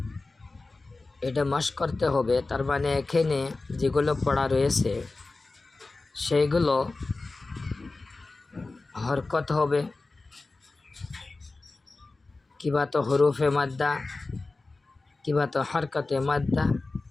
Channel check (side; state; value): right; quieter; 3.4 dB